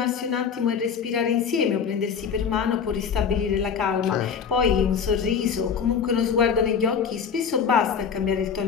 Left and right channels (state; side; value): quieter; right; 6.7 dB